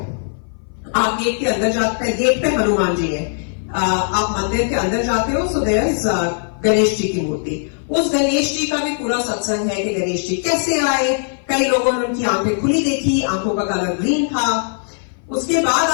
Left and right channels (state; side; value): silent; right; 58 dB below the other